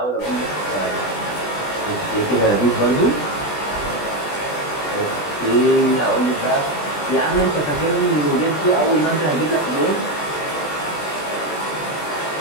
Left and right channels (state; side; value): late; right; 20 ms